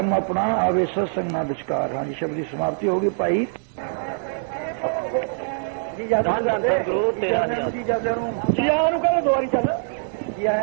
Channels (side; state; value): left; silent; digital silence